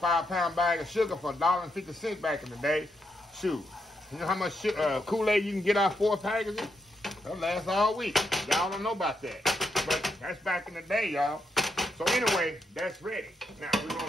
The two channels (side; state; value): both; normal; correlation 0.81